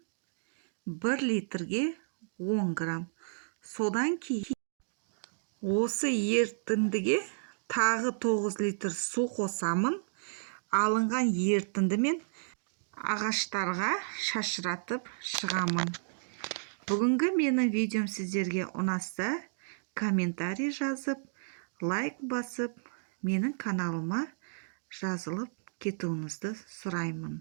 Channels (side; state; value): left; silent; digital silence